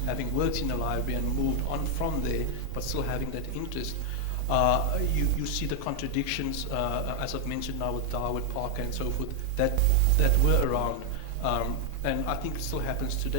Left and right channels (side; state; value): both; different; correlation 0.00